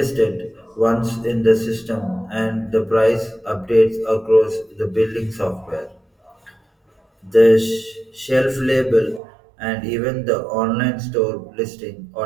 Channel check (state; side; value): drops out; left; at 9.2 s